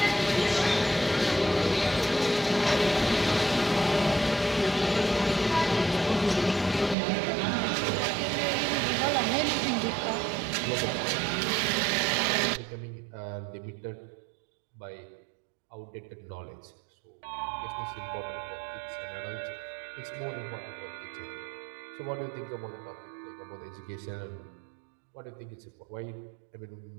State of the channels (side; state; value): left; drops out; at 7.0 s